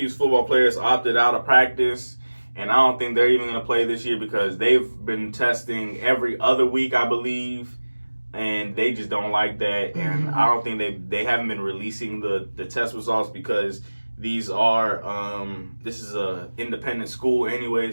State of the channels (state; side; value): inverted; both; correlation -1.00